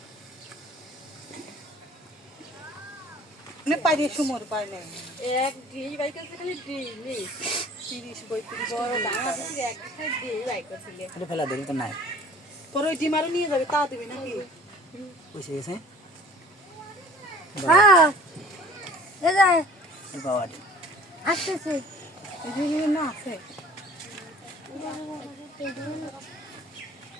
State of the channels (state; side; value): normal; both; correlation 0.50